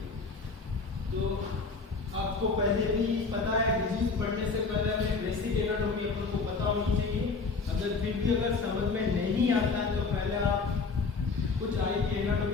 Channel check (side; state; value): right; quieter; 4.3 dB